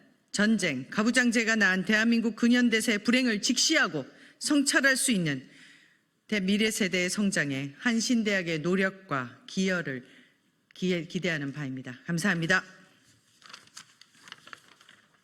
전쟁, 가부장제가 낳은 대한민국 근현대사의 불행을 직시하고 성찰할 수 있는 미래 세대의 성장에 한신대학의 노력과 기여를 기대하는 바입니다. 감사합니다.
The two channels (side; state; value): both; identical; correlation 1.00